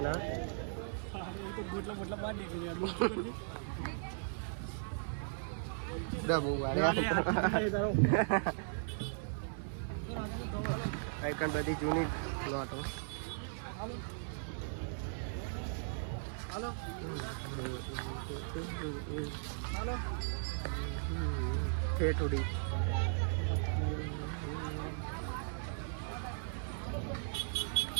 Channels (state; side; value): silent; left; 53 dB below the other